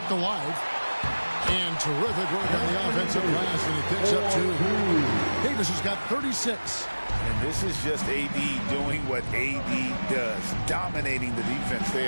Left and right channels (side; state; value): both; inverted; correlation -1.00